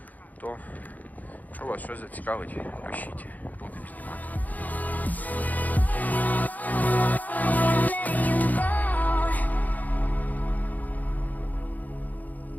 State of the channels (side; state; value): right; late; 0.080 ms